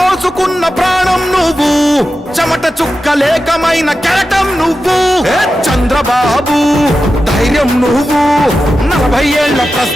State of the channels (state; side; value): normal; both; correlation 0.92